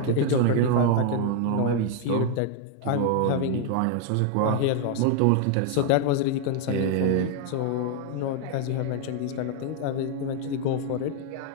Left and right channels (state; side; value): different; both; correlation 0.00